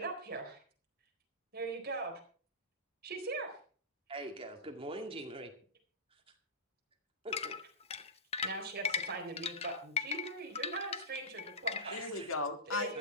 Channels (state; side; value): normal; both; correlation -0.16